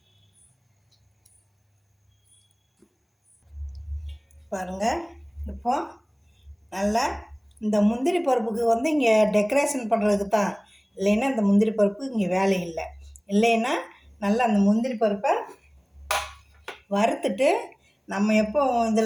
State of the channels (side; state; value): both; identical; correlation 1.00